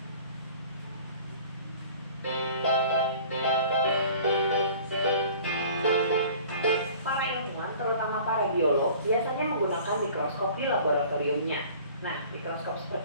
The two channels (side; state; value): both; inverted; correlation -0.47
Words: Para ilmuwan, terutama para biolog, biasanya menggunakan mikroskop di laboratoriumnya. Nah, mikroskop